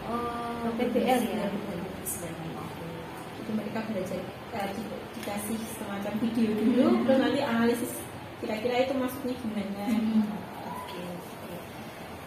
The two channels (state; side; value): identical; both; correlation 1.00